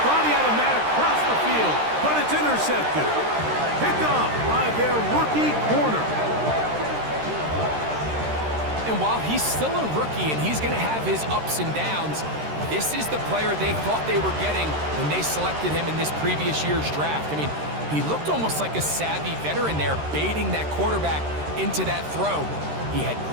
thought he had a man across the field, but it's intercepted. Picked off by their rookie corner. And while he's still a rookie and he's going to have his ups and downs, this is the player they thought they were getting when they selected him in this previous year's draft. I mean, he looked almost like a savvy veteran there, baiting that quarterback into that throw. He had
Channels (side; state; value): left; late; 13 ms